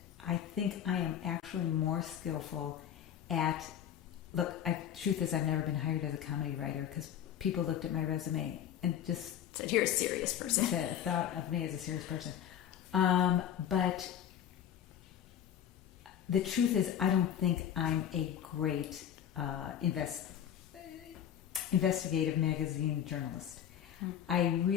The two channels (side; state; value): right; quieter; 9.8 dB